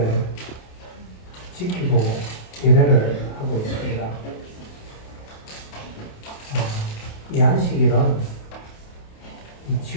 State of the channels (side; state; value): right; late; 28 ms